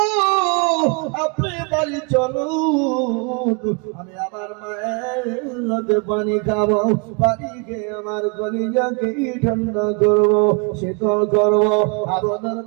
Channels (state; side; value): quieter; left; 33.3 dB